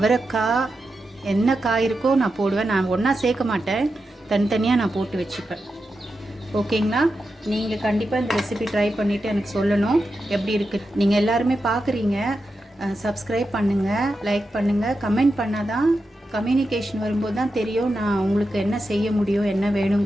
என்ன காய் இருக்கோ நான் போடுவேன். நான் ஒன்றா சேர்க்க மாட்டேன், தனித்தனியாக நான் போட்டு வச்சுப்பேன். ஓகேங்களா? நீங்கள் கண்டிப்பாக இந்த ரெசிபி ட்ரை பண்ணிவிட்டு எனக்கு சொல்லணும் எப்படி இருக்குது. நீங்கள் எல்லாருமே பார்க்குறீங்க, சப்ஸ்கிரைப் பண்ணுங்கள், லைக் பண்ணுங்கள், கமெண்ட் பண்ணால் தான் கம்யூனிகேஷன் வரும்போது தான் தெரியும் நான் உங்களுக்கு என்ன செய்ய முடியும், என்ன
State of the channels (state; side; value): normal; both; correlation 0.89